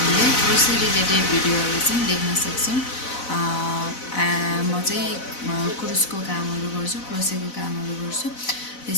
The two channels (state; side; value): late; right; 4.0 ms